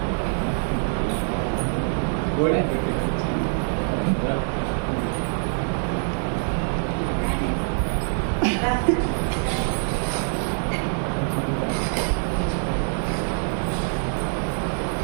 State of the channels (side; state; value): left; silent; 62 dB below the other